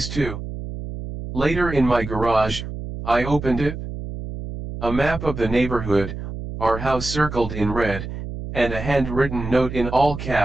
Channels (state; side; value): noise; right; hum, 8 dB below the sound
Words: 2. Later in my garage, I opened it. A map of the neighborhood, our house circled in red, and a handwritten note in all